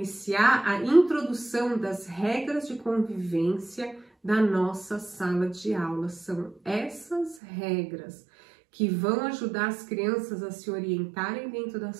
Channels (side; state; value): left; drops out; at 7.4 s